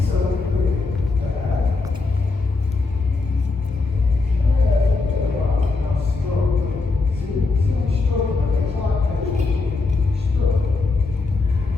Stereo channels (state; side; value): quieter; right; 3.8 dB